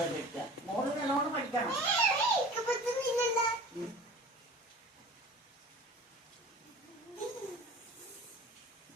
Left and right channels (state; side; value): normal; both; correlation 0.41